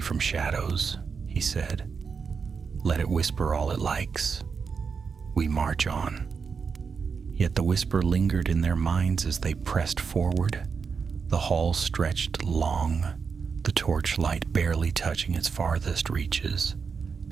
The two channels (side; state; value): left; quieter; 5.6 dB